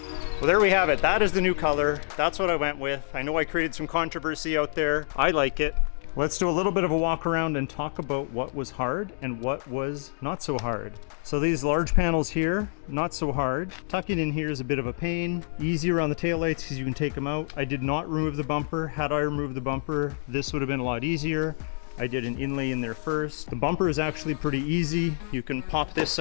Well, there we have it. That is the new color. That's what I went with. I know I created some controversy out there. I like it. Let's do a little bit of a walk around and talk about what was hard and what was not so hard. So these large panels here, not so hard. Tucking in here is a bit of a pain. Easy around the taillights because you can take them out. I did not remove the bumper. Had I removed the bumper, this would have been a lot easier. I did an inlay in there first. The bumper is actually pretty easy. You can pop this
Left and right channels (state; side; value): silent; right; digital silence